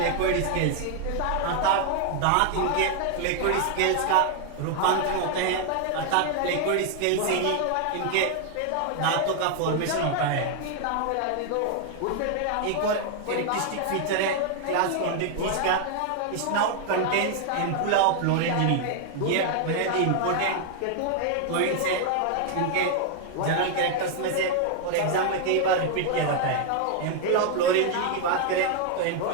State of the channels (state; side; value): different; both; correlation 0.00